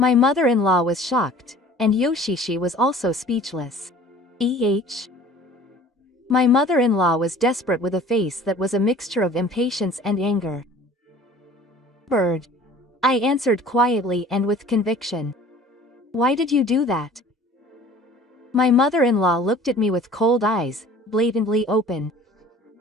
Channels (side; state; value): both; normal; correlation 0.48